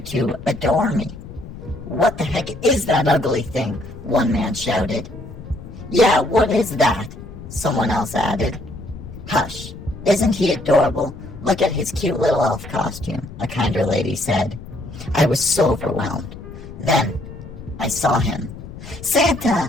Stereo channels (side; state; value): left; noise; rumble, 13 dB below the sound